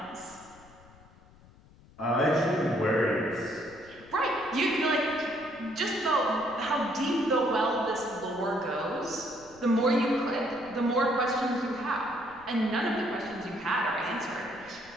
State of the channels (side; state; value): left; noise; rumble, 25 dB below the sound